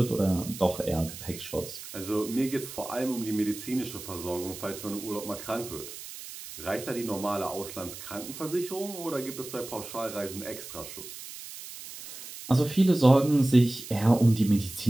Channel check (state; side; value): noise; right; hiss, 12 dB below the sound